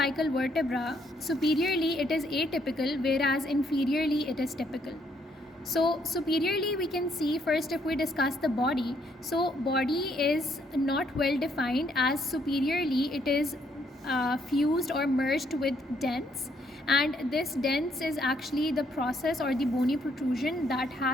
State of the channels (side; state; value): both; normal; correlation 0.71